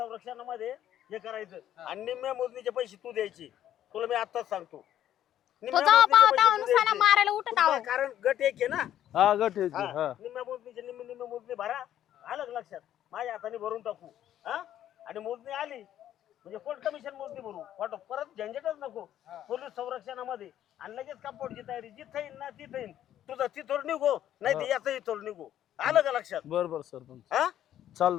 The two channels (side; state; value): right; quieter; 11.4 dB